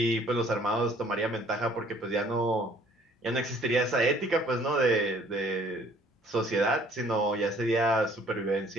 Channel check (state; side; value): normal; both; correlation 0.57